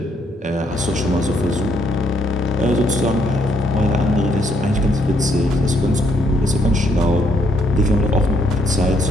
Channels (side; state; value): both; normal; correlation 0.72